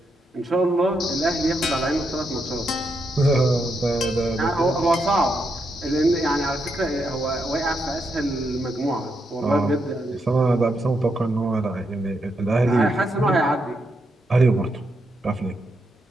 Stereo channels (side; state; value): both; normal; correlation 0.81